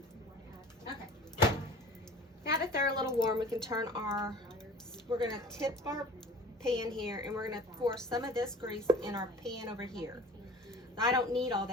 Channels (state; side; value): normal; both; correlation 0.44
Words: Okay. Now that they're a little warm, we can turn we're going to tip our pan here, and we're going to pour some of this grease in our pan over here. I don't need all